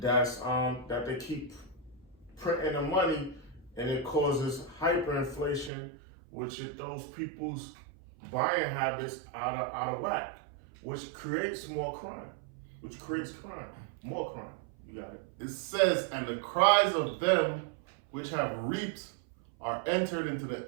that they keep printing the money, and it causes hyperinflation, which it throws people's buying habits out of whack, which creates more crime, more crime. You got it. It says, and the cries of them which have reaped are entered into the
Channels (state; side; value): drops out; left; at 5.7 s